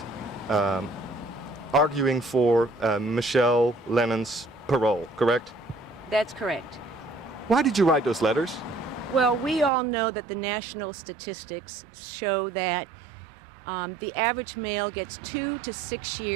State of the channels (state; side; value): drops out; left; at 9.7 s